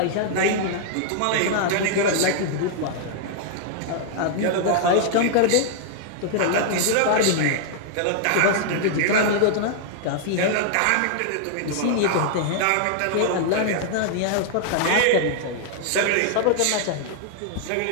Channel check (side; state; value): both; different; correlation -0.01